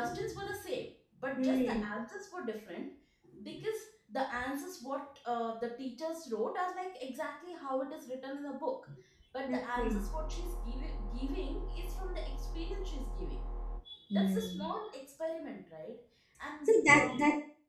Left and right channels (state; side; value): identical; both; correlation 1.00